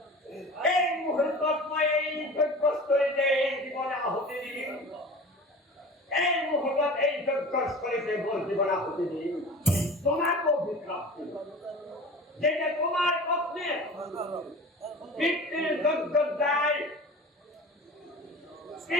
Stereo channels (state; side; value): normal; both; correlation 0.38